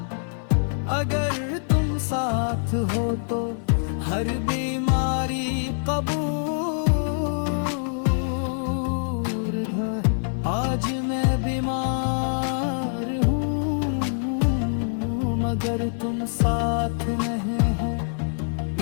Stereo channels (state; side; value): silent; right; 62 dB below the other